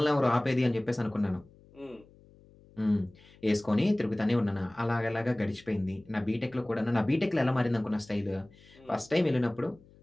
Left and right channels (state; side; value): noise; left; hum, 26 dB below the sound